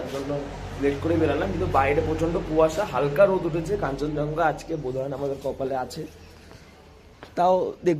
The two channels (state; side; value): identical; both; correlation 1.00